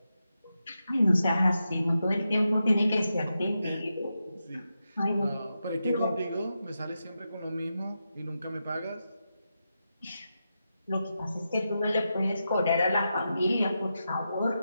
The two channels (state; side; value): inverted; both; correlation -0.88